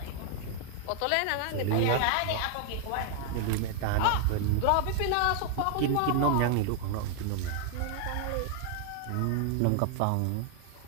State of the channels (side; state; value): both; different; correlation 0.00